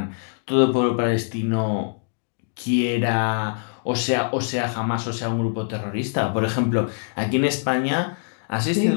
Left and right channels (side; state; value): right; silent; digital silence